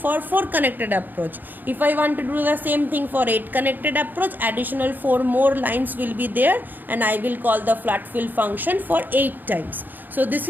4 connected approach. If I want to do the same thing for 8 connected approach, additional 4 more lines will be there, and I will call the flat fill function for 8 times. So this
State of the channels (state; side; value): late; left; 0.088 ms